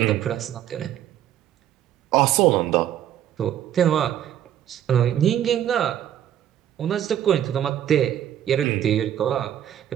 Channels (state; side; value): quieter; left; 11.0 dB